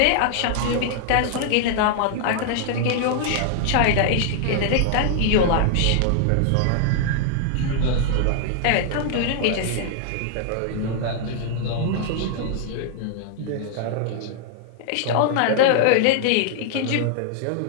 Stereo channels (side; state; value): both; different; correlation -0.01